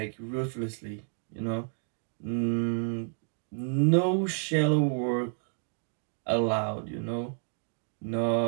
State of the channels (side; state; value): left; silent; 58 dB below the other